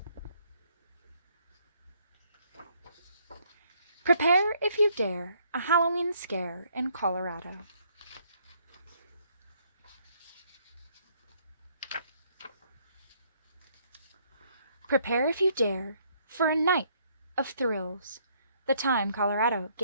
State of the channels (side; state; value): both; inverted; correlation -0.67